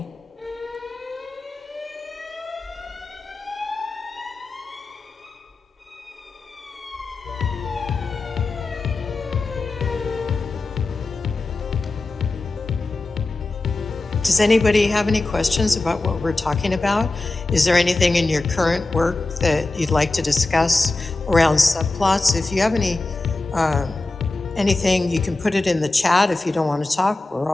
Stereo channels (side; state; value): right; quieter; 3.1 dB